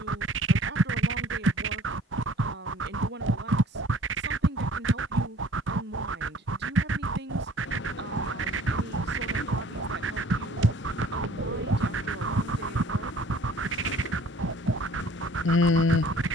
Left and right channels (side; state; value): both; normal; correlation 0.52